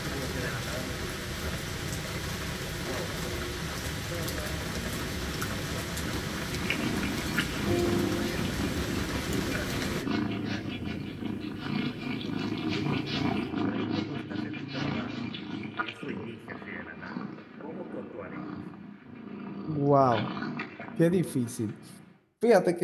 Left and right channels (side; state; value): both; identical; correlation 1.00